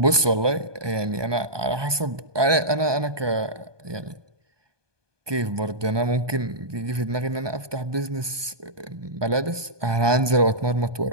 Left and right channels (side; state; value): left; late; 1.2 ms